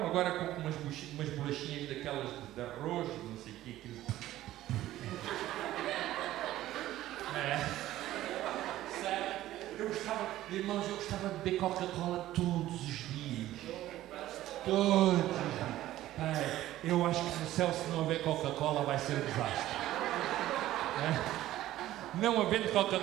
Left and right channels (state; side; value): quieter; left; 14.5 dB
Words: agora compro umas bolachinhas daquelas de arroz, não sei o que, aquilo. Sério? Irmãos, eu gostava de beber Coca-Cola todos os dias. Todos os dias. Eu acho que no céu, se não houver Coca-Cola, vai ser um desastre. Não havendo